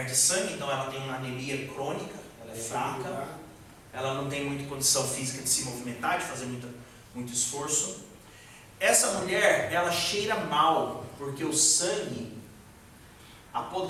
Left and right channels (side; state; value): both; identical; correlation 1.00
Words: sangue, então ela tem uma anemia crônica, ela é fraca, ela não tem muita condição física de se movimentar, de fazer muito esforço. Essa mulher, ela cheira mal, porque o sangue